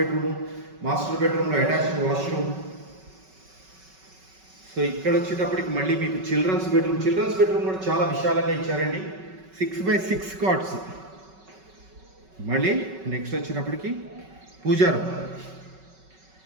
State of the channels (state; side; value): late; left; 5.3 ms